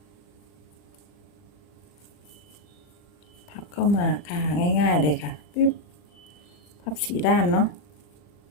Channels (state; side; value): late; right; 40 ms